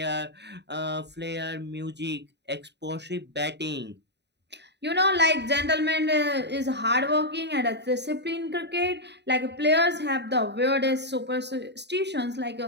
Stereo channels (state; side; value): late; left; 0.50 ms